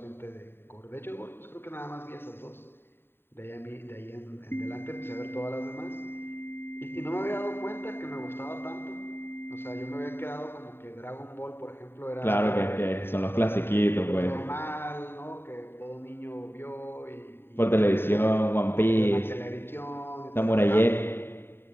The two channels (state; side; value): late; right; 0.11 ms